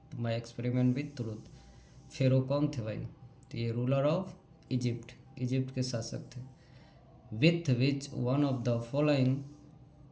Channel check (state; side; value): identical; both; correlation 1.00